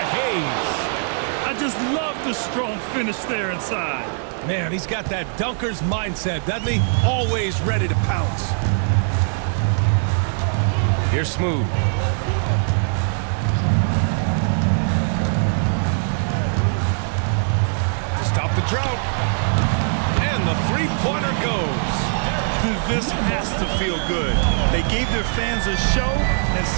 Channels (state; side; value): silent; left; digital silence